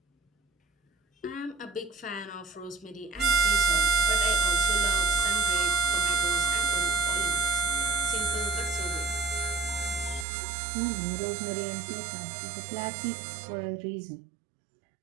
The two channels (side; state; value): left; drops out; at 10.2 s